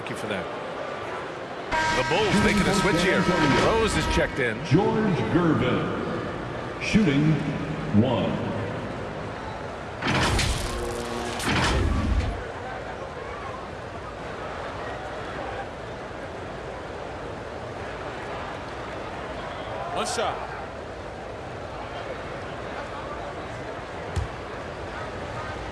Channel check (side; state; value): both; identical; correlation 1.00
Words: you for that. The Bulls making a switch here. Rose is checked in. George Gervin, shooting 1. One shot.